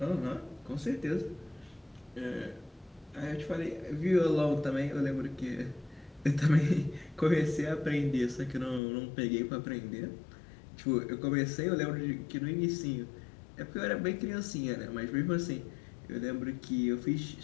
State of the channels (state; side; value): drops out; right; at 8.8 s